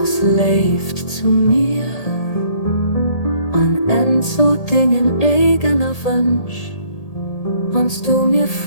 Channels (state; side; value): late; right; 1.8 ms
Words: leeft zu mir an so Dingen eigener Wunsch, wenn's du mir